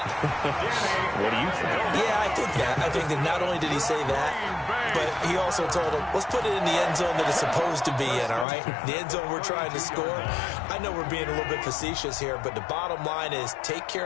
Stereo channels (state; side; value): drops out; right; at 8.5 s